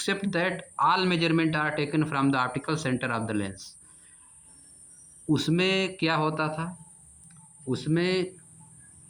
that all measurement are taken from the optical centre of the lens. उसमें क्या होता था, उसमें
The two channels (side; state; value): both; identical; correlation 1.00